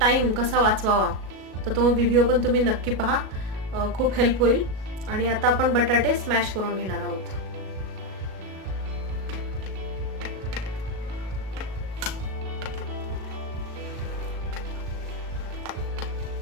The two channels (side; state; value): left; late; 37 ms